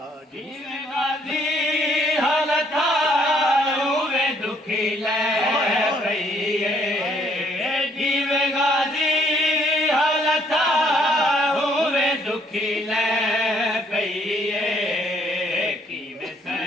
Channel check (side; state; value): both; normal; correlation 0.66